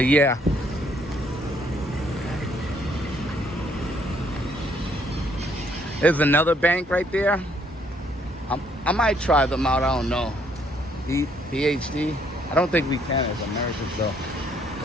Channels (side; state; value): both; normal; correlation 0.67